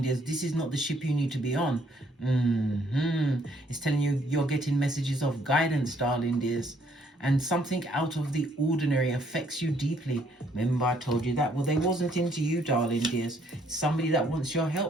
dears. This is not the ship you need to be on. It's telling you you're getting messages of guidance, darling dears. And something out of the ordinary affects you deeply. Remember I told you that? Well, they wasn't into you, darling dears. It's somebody that wants your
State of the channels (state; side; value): normal; both; correlation 0.66